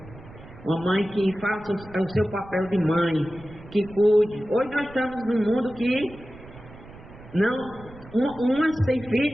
Uma mãe que faça o seu papel de mãe, que cuide. Hoje nós estamos num mundo que umas têm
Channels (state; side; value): noise; right; rumble, 19 dB below the sound